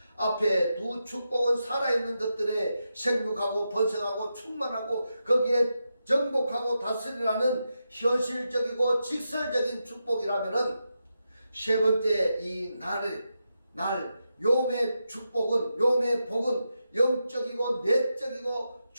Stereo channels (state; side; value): inverted; both; correlation -0.87